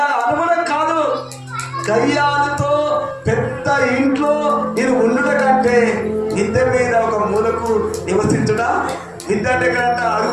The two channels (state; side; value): identical; both; correlation 1.00